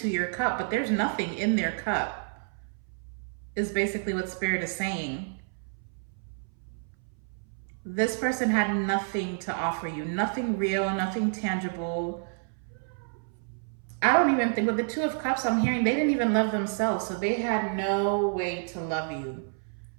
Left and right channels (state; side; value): silent; left; 58 dB below the other